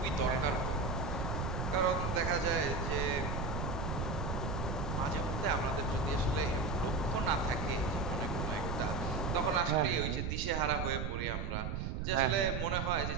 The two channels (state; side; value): noise; right; rumble, 2 dB below the sound